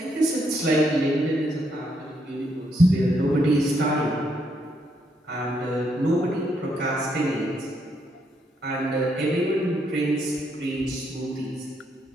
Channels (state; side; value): normal; both; correlation 0.75